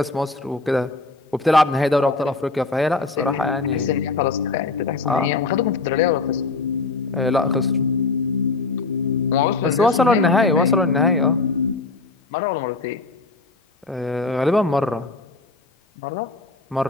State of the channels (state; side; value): quieter; right; 3.6 dB